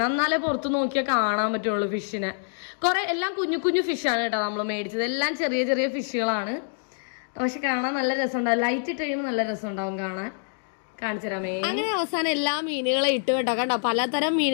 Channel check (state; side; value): silent; right; digital silence